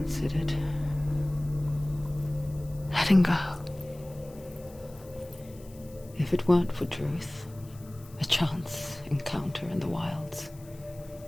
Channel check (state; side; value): noise; left; hiss, 24 dB below the sound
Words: letting go. If it weren't for Druth, a chance encounter in the wilds,